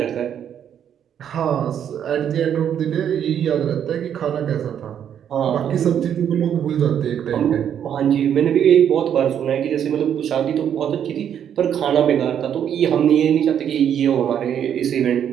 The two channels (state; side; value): quieter; left; 9.1 dB